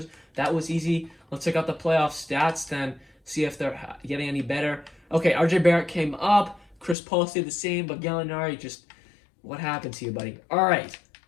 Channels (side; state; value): right; drops out; at 7.0 s